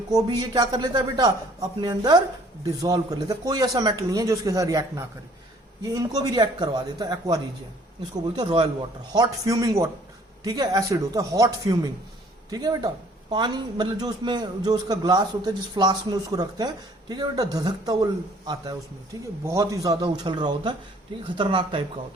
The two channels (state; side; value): normal; both; correlation 0.57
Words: को भी ये क्या कर लेता है बेटा, अपने अंदर डिसॉल्व कर लेता है। कोई ऐसा मेटल नहीं है जो उसके साथ रिएक्ट ना करे, ये इनको भी रिएक्ट करवा देता है, एक्वा रीजियन। इसको बोलते हैं royal water, hot fuming water, ठीक है, एसिड होता है हॉट फ्यूमिंग, ठीक है बेटा। पानी मतलब जो उसमें जो उसका ग्लास होता है, जिस फ्लास्क में उसको रखते हैं, ठीक है बेटा, धधकता वो आता है उसमें, ठीक है, बहुत ही ज्यादा उछल रहा होता है, ठीक है, खतरनाक टाइप का